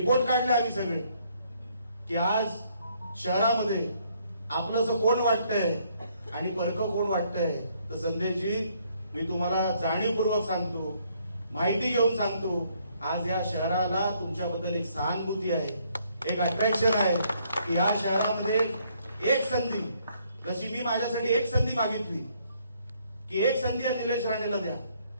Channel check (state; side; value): inverted; both; correlation -0.68